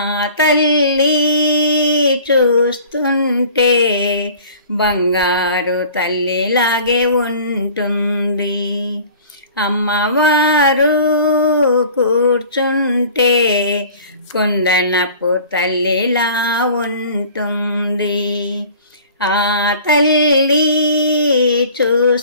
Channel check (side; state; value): both; inverted; correlation -0.46